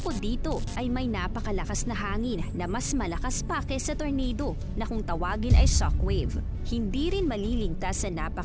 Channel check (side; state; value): both; identical; correlation 1.00